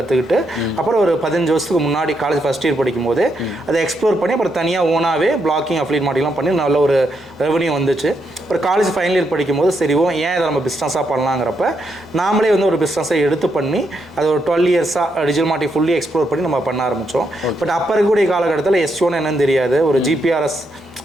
அப்புறம் ஒரு 15 வருஷத்துக்கு முன்னாடி காலேஜ் ஃபஸ்ட் இயர் படிக்கும்போது அதை எக்ஸ்ப்ளோர் பண்ணி அப்புறம் தனியாக ஓனாகவே பிளாக்கிங் அஃப்லீட் மார்க்கெட்டிங்லாம் பண்ணி நல்ல ஒரு ரெவன்யூ வந்துச்சு. அப்புறம் காலேஜ் ஃபைனல் இயர் படிக்கும்போது சரி ஏன் இதை நம்ம பிஸ்னஸாக பண்ணலாங்கிறப்ப நாமளே வந்து ஒரு பிஸ்னஸை எடுத்து பண்ணி அது ஒரு 12 இயர்ஸாக டிஜிட்டல் மார்க்கெட்டிங் ஃபுல்லி எக்ஸ்ப்ளோர் பண்ணி நம்ம பண்ண ஆரம்பித்தோம். பட் அப்போ இருக்கக்கூடிய காலகட்டத்தில் S1 என்னன்னு தெரியாது, ஒரு GPRS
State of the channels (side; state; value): both; normal; correlation 0.79